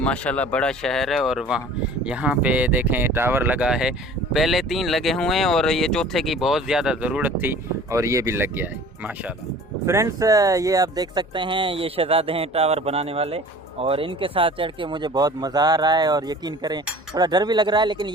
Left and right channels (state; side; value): normal; both; correlation 0.45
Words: बड़ा शहर है। और वहाँ यहाँ पे देखें टावर लगा है। पहले 3 लगे हुए हैं और ये चौथे की बहुत ज़्यादा ज़रूरत थी और ये भी लग गया है माशाल्लाह। फ्रेंड्स, ये आप देख सकते हैं, ये शहजादे हैं टावर बनाने वाले। और इनके साथ चढ़ के मुझे बहुत मज़ा आ रहा है। और यकीन करें थोड़ा डर भी लग रहा है, लेकिन